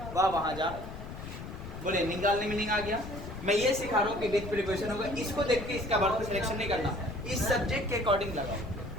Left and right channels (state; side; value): noise; left; rumble, 10 dB below the sound